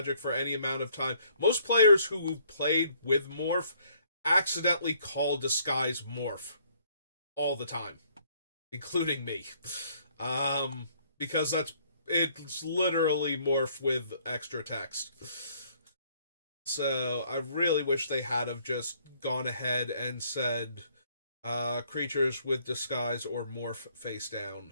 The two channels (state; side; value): inverted; both; correlation -0.64